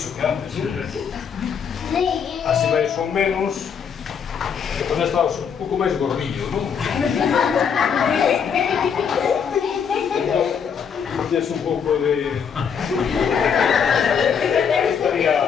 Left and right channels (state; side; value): quieter; right; 7.0 dB